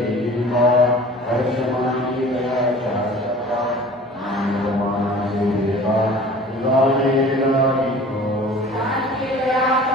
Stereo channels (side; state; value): both; normal; correlation 0.44